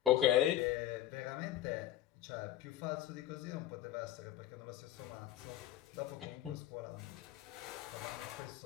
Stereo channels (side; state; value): right; quieter; 12.7 dB